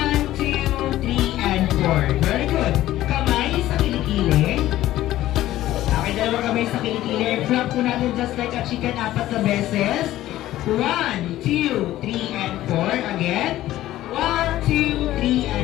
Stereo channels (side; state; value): right; quieter; 14.6 dB